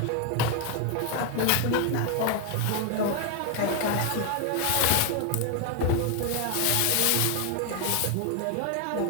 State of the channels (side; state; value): both; different; correlation 0.01